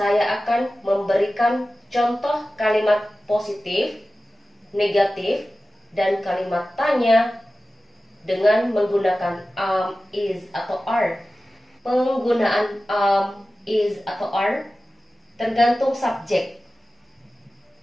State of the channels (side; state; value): both; normal; correlation 0.95